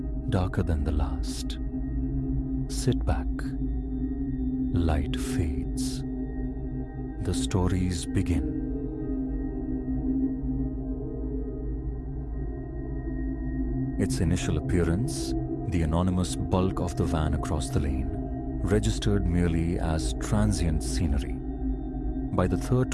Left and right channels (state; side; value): identical; both; correlation 1.00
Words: darker than the last. Sit back. Light fades. The stories begin. Its initial appearance, the anonymous bulk of the van across the lane, registered merely as transient scenery. By the third